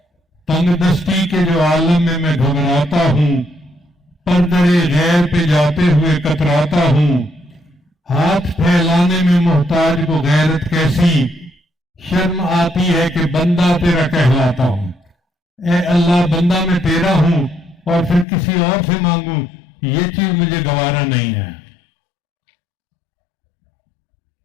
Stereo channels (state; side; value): drops out; right; at 18.2 s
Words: تنگ دستی کے جو عالم میں گھبراتا ہوں، پردرے غیر پہ جاتے ہوئے کتراتا ہوں، ہاتھ پھیلانے میں محتاج کو غیرت کیسی، شرم آتی ہے کہ بندہ تیرا کہلاتا ہوں۔ اے اللہ بندہ میں تیرا ہوں اور پھر کسی اور سے مانگوں، یہ چیز مجھے گوارا نہیں ہے۔